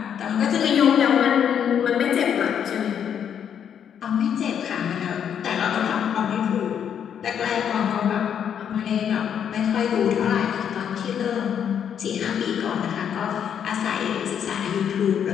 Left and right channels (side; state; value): right; quieter; 8.5 dB